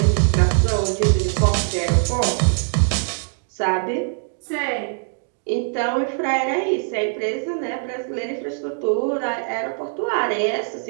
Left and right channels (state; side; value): silent; left; 64 dB below the other